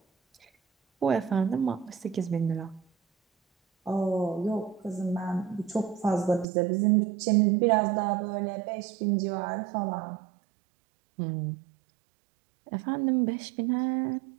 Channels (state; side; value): drops out; left; at 6.5 s